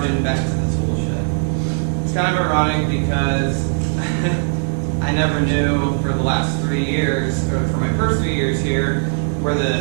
back to the tool shed. It's kind of ironic because I never knew for the last 3 years, or for my first 3 years here, where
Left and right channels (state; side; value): silent; left; digital silence